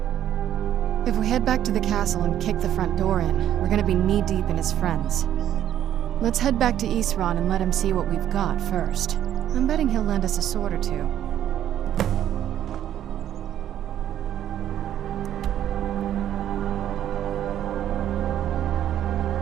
If we head back to the castle and kick the front door in, we're gonna be knee-deep in his friends. Let's head back to Isran and let him see what we've got first. I'm betting he'll lend us a sword or two.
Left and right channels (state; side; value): quieter; left; 11.1 dB